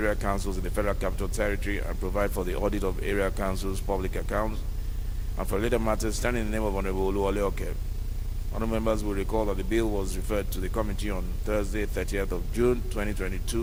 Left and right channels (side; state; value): both; identical; correlation 1.00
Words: councils in the Federal Capital Territory and provide for the audit of area councils' public accounts and for later matters standing in the name of Honorable Oluwole Oke. Honorable members will recall that the bill was referred to the committee on Thursday, 30th of June,